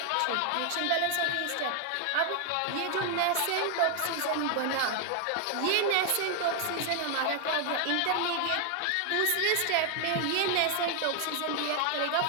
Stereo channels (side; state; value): both; different; correlation 0.00